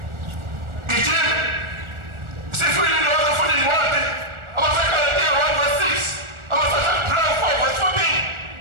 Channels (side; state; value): left; late; 1.4 ms